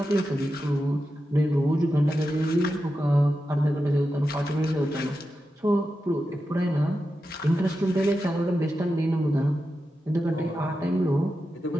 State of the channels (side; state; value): both; normal; correlation 0.90